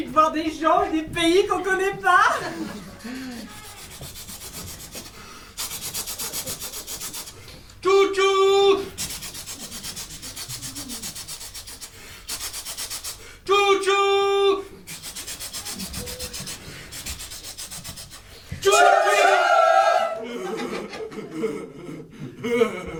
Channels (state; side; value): identical; both; correlation 1.00